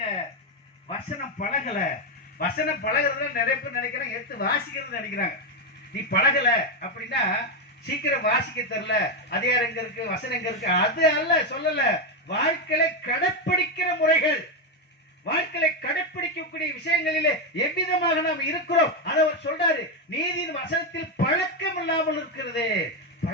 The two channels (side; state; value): both; normal; correlation 0.07